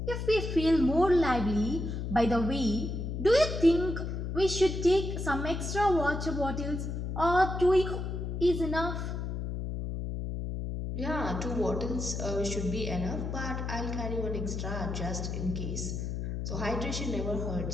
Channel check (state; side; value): noise; left; hum, 4 dB below the sound